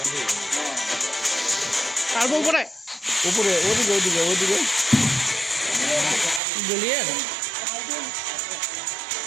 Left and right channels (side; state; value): left; drops out; at 6.4 s